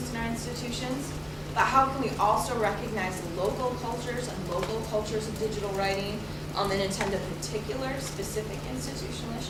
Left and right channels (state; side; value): identical; both; correlation 1.00